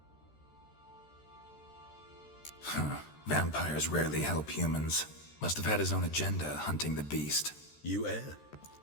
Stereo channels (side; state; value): right; late; 13 ms